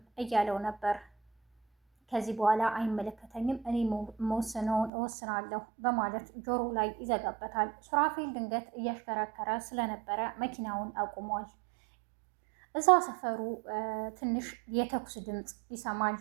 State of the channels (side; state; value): left; drops out; at 4.9 s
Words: እያለው ነበር። ከዚህ በኋላ አይመለከተኝም፣ እኔ መወስነውን እወስናለሁ በማለት ጆሮ ላይ ይዘጋበታል። ሱራፌል ድንገት እያሽከረከረ ስለነበረ መኪናውን አቁሟል። እዛ ሰፈሩ ትንሽ የተኩስ ድምፅ ይሰማል።